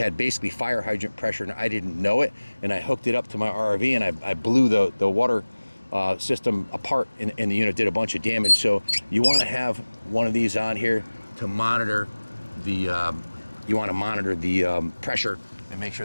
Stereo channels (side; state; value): both; inverted; correlation -1.00